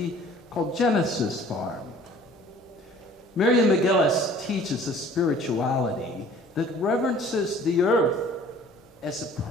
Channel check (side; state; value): both; normal; correlation 0.51